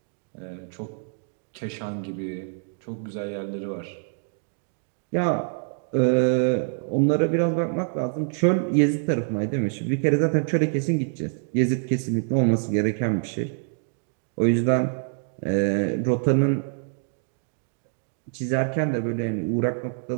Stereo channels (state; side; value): silent; left; 61 dB below the other